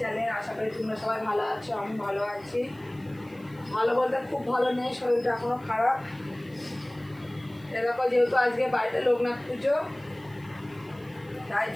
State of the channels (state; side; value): noise; right; hiss, 28 dB below the sound